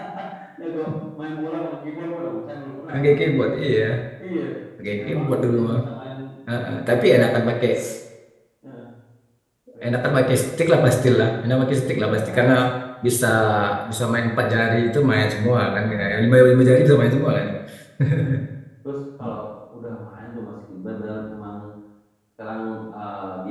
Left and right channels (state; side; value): identical; both; correlation 1.00